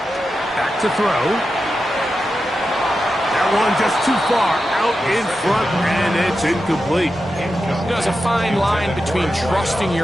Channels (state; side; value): normal; both; correlation 0.90